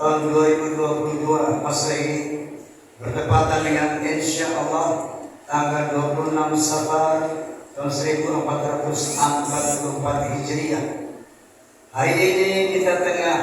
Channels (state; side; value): identical; both; correlation 1.00